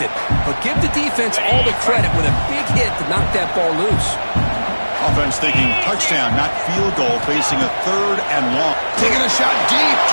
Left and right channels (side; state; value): both; inverted; correlation -1.00